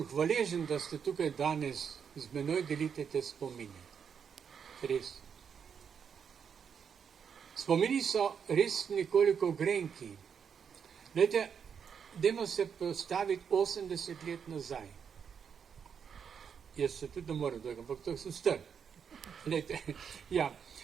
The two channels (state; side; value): quieter; left; 7.1 dB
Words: hvaležen, da ste tukaj danes z menoj delite te spomine. Res. Spomini so res nekoliko grenki. Glejte, dajmo se postaviti 80 let nazaj. Jaz se tudi ne morem dojega, ampak to sem star. Glejte, ja.